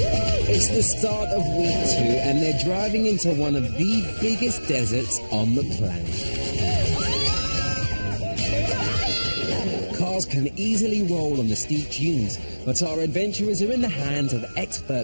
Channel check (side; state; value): both; inverted; correlation -1.00